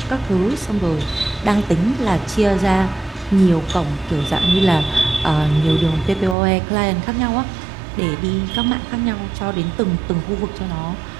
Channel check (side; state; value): left; drops out; at 6.4 s